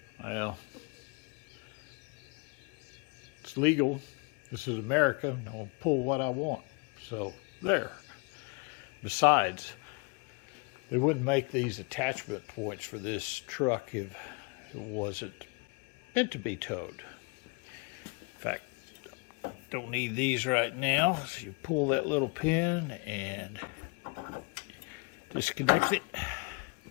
Well, it's legal. This is America. I'll pull what I want. So there. Besides, they wouldn't make these attachment points for this truck if it wasn't meant to be towed. In fact, don't need these right now. So you pull that little pin and disconnect it.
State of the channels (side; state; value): right; quieter; 30.9 dB